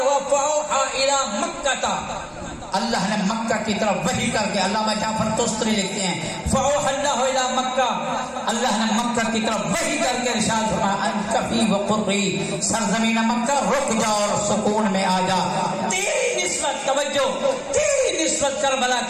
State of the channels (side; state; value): both; identical; correlation 1.00